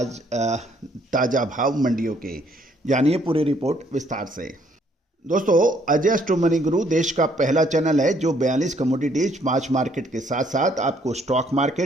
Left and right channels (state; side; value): normal; both; correlation 0.66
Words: ताज़ा भाव मंडियों के। जानिए पूरी रिपोर्ट विस्तार से। दोस्तों, अजय स्टॉक मनी गुरु देश का पहला चैनल है जो 42 कमोडिटीज, 5 मार्केट के साथ साथ आपको stock